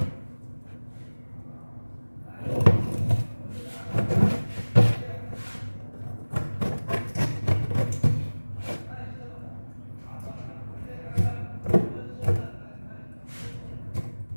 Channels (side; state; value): both; inverted; correlation -1.00